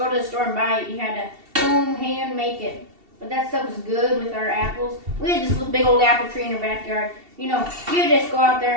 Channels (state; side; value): late; left; 2.7 ms